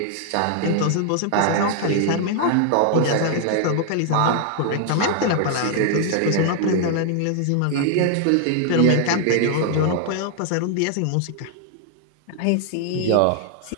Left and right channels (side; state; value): both; different; correlation 0.00